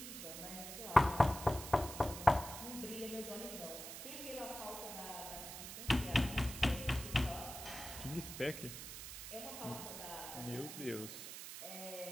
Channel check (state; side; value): noise; right; hiss, 9 dB below the sound